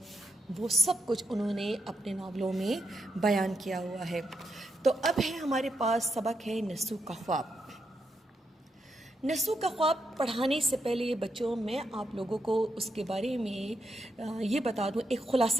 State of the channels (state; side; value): normal; both; correlation 0.83